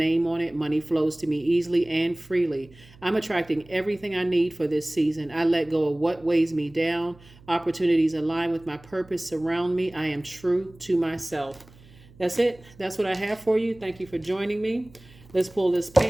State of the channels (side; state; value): right; noise; hum, 24 dB below the sound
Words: on it. Money flows to me easily and freely. I'm attracting everything I need for this season. I let go of what weighs me down. Opportunities align with my purpose surround me. I am true to myself. That's it. That's what I have for you. Thank you for joining me. Let's pull this